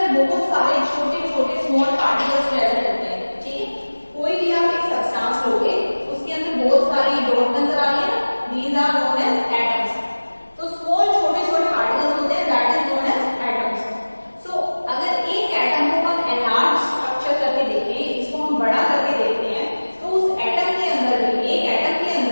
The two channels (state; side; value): inverted; both; correlation -1.00